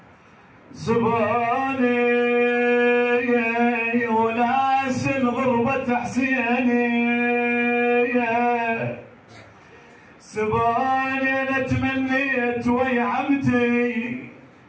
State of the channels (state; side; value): identical; both; correlation 1.00